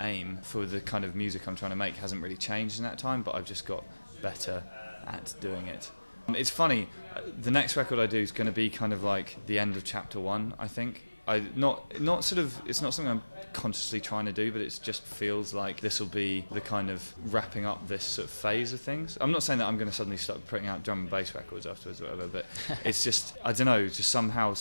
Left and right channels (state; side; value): inverted; both; correlation -1.00